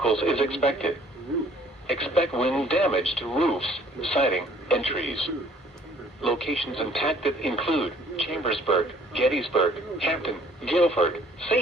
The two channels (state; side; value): normal; both; correlation 0.57